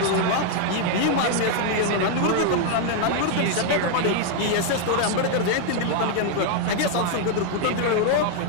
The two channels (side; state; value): both; different; correlation 0.00